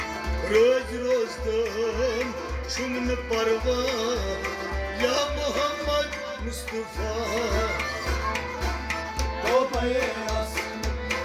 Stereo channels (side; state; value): both; identical; correlation 1.00